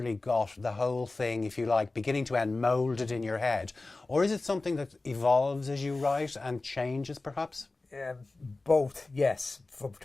got the whole thing, if you like, beginning to end, moulded in your head? Or is it something that evolves as you write and changes, perhaps? both, yes,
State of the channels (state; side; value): quieter; right; 3.3 dB